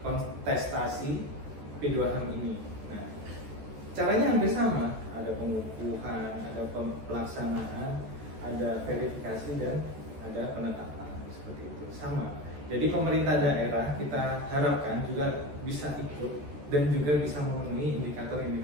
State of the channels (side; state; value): left; late; 14 ms